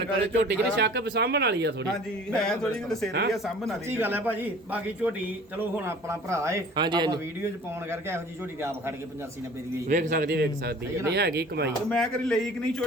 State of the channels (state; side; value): normal; both; correlation 0.47